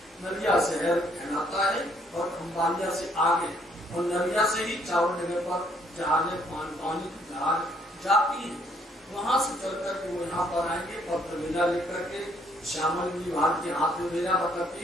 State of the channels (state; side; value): normal; both; correlation 0.67